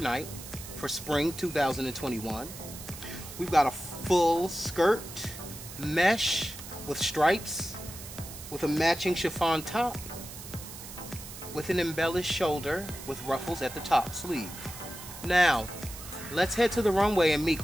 for spring 2021. We've got a full skirt, mesh with stripes, with a matching chiffon top, with an embellished shoulder with ruffles at the top sleeve. Now, let's head to the runway and meet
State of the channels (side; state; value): right; noise; hiss, 13 dB below the sound